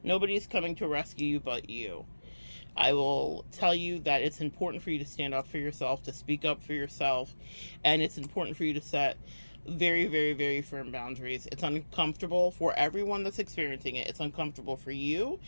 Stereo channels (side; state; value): both; inverted; correlation -1.00